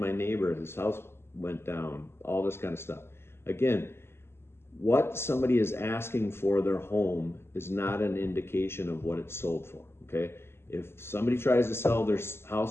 neighbor, his house went down, all this kind of stuff. Again, what somebody is asking for their home is not an indication of what it's sold for, okay? If somebody tries to sell their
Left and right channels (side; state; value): right; late; 0.12 ms